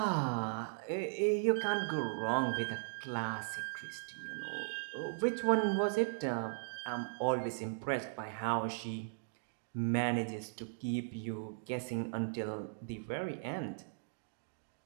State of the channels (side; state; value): left; silent; digital silence